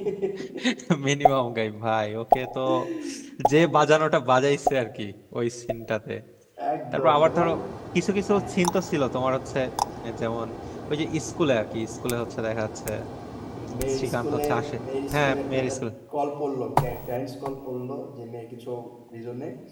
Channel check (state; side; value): identical; both; correlation 1.00